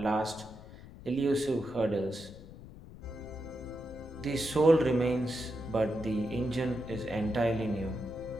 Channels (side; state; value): left; noise; rumble, 16 dB below the sound